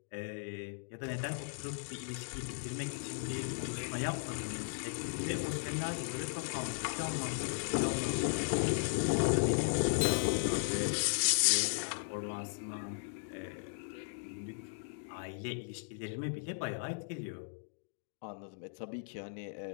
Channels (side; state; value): right; silent; digital silence